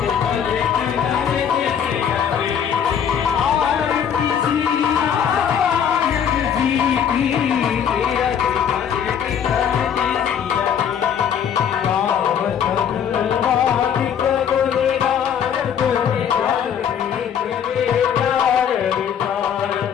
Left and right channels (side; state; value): right; quieter; 8.3 dB